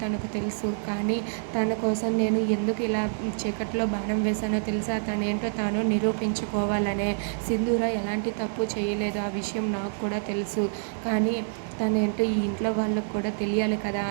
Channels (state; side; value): silent; left; digital silence